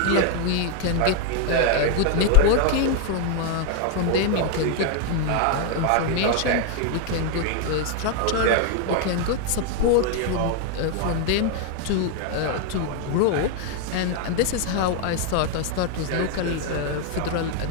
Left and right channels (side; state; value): both; different; correlation 0.00